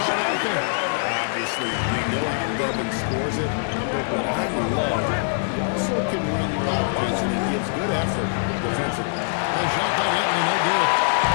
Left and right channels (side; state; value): right; silent; digital silence